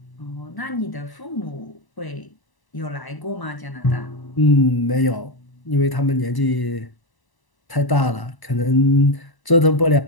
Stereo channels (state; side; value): late; right; 1.0 ms